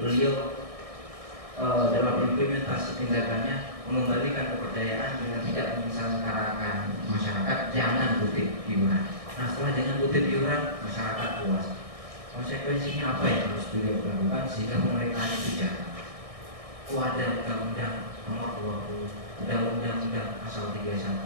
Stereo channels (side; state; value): left; late; 1.6 ms